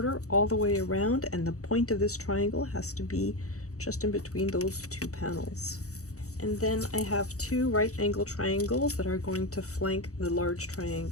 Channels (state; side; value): late; right; 0.65 ms